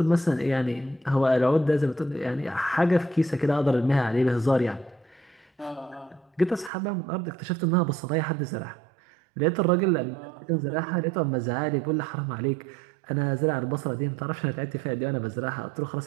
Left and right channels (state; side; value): drops out; left; at 6.7 s